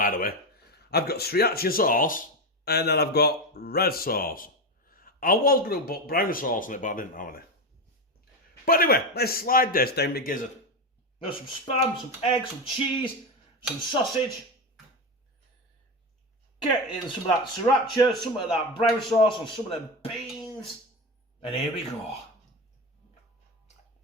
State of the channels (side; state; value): both; normal; correlation 0.15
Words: the way. I've got sriracha sauce, and then I've got red sauce. I was going to put brown sauce on it, but I didn't have any. But anyway, let's slide this down my gizzard. There's some spam, some eggs, some cheese, some sausage. Get in some of that sriracha, some of that brown sauce, and some of them beans. And here we go.